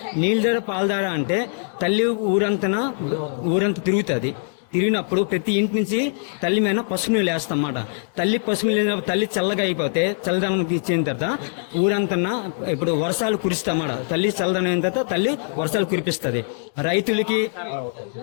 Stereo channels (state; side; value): silent; right; digital silence